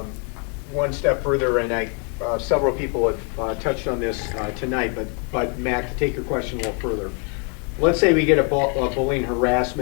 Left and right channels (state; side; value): quieter; right; 37.9 dB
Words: one step further, and several people have touched on this tonight, but Mac, to take your question a little further. Let's say we get a bullying